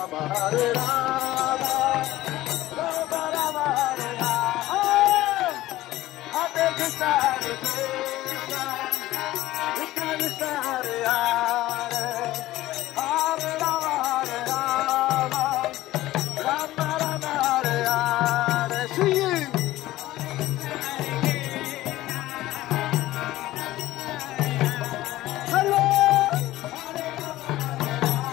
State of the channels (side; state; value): right; quieter; 16.2 dB